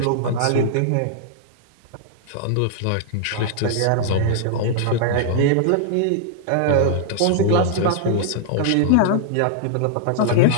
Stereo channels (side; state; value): both; different; correlation -0.01